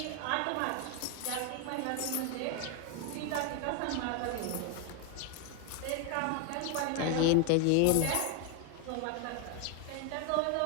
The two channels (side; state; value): both; different; correlation 0.01